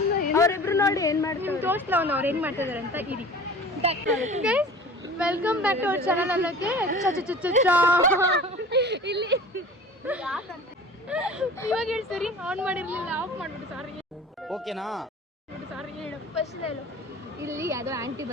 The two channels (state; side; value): normal; both; correlation 0.41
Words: ಅವರಿಬ್ರು ನೋಡಿ ಏನ್ ಮಾಡ್ತಾರೆ, ತೋರಿಸ್ಲ ಅವ್ರು ಏನ್ ಮಾಡ್ತಿದಾರೆ ಅಂತ. ಇರಿ guys welcome back to our channel ಅನ್ನೋಕ್ಕೆ ಇಲ್ಲಿ ಇವಾಗ ಹೇಳಿ ಸರಿ. ಆನ್ ಮಾಡಿರ್ಲಿಲ್ಲ, ಆಫ್ ಮಾಡ್ಬಿಟ್ಟು. ಸಾರಿ ಓಕೆನಾ? ಸಾರಿ ಹೇಳು. ಫಸ್ಟ್ ಹೇಳು. ಇಲ್ಲಿ ಯಾವ್ದೋ ಆಂಟಿ